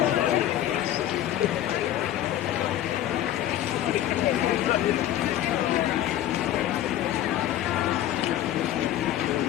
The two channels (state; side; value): quieter; right; 12.5 dB